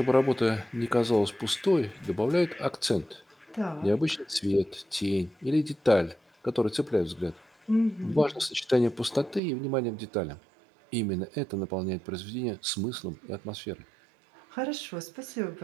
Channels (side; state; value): left; drops out; at 9.4 s